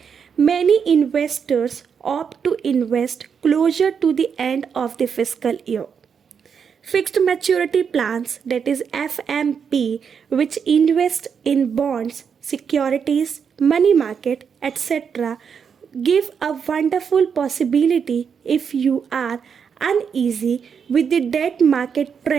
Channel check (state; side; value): quieter; left; 6.8 dB